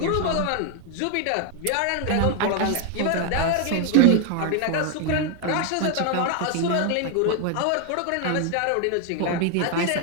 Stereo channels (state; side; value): different; both; correlation 0.01